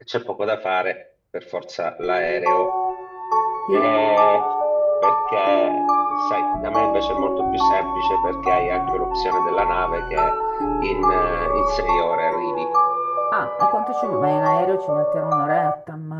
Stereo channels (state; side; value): identical; both; correlation 1.00